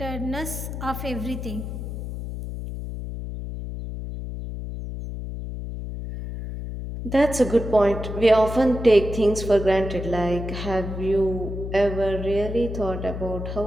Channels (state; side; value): noise; left; hum, 7 dB below the sound